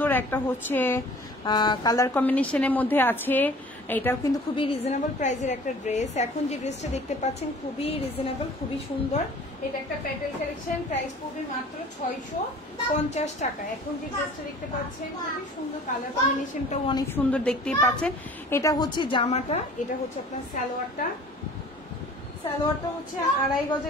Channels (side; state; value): both; normal; correlation 0.47